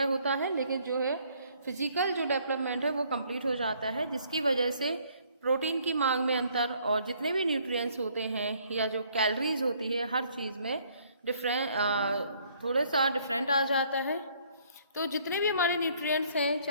होता है, लेकिन जो है फिजिकल जो डेवलपमेंट है वो कंप्लीट हो जाता है, जिसकी वजह से प्रोटीन की मांग में अंतर और जितने भी न्यूट्रिएंट्स होते हैं या जो कैलोरीज होती है हर चीज़ में थोड़ा सा डिफरेंट आ जाता है। तो जितने भी हमारे न्यूट्रिएंट्स हैं,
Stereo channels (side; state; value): both; inverted; correlation -0.63